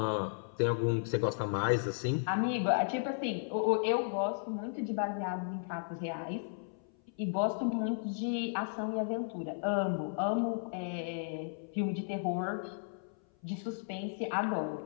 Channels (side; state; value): right; silent; 55 dB below the other